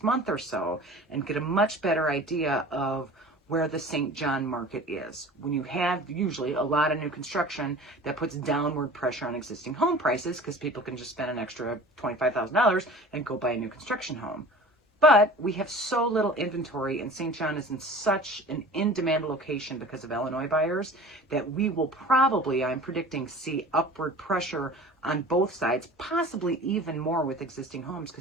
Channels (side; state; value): both; normal; correlation 0.41